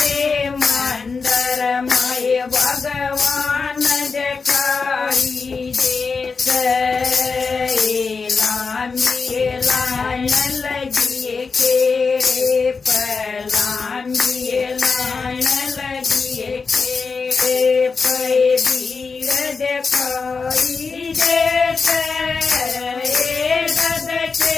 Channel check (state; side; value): quieter; right; 4.8 dB